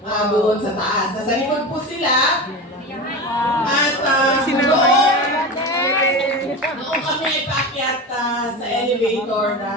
doon sa taas. Nasa likod po sila. At noong kami ay paakyat sa elevator,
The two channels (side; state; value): both; normal; correlation 0.26